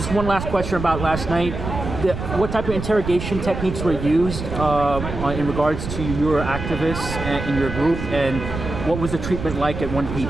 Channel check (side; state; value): right; noise; rumble, 7 dB below the sound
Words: one last question about last night. What type of interrogation techniques were used in regards to your activists in your group, and What was the treatment like at